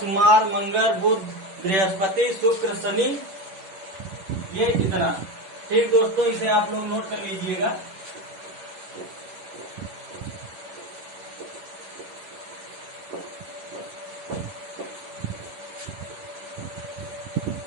मंगल, बुध, बृहस्पति, शुक्र, शनि, ये इतना। ठीक दोस्तों, इसे आप लोग नोट कर लीजिएगा।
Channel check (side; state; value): left; late; 11 ms